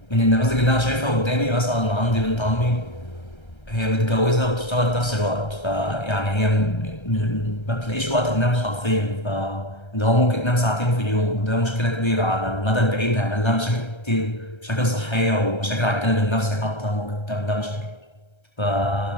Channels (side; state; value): right; late; 1.3 ms